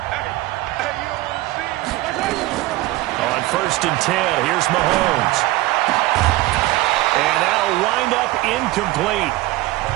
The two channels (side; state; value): left; quieter; 18.5 dB